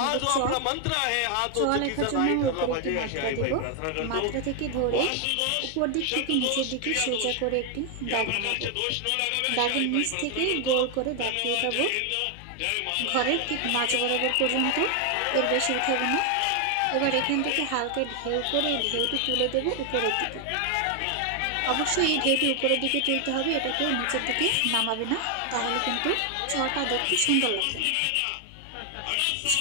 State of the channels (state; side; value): different; both; correlation 0.00